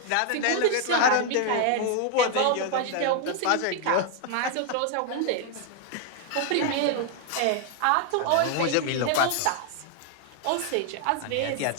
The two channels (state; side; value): different; both; correlation 0.00